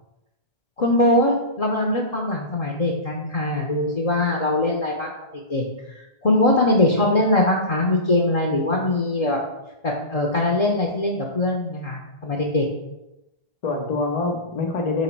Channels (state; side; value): late; right; 1.3 ms